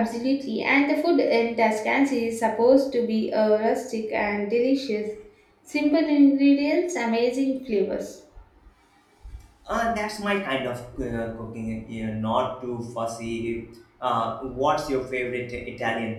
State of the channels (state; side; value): identical; both; correlation 1.00